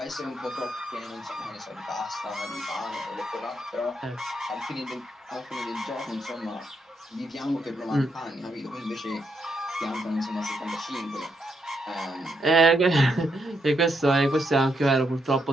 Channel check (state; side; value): normal; both; correlation 0.79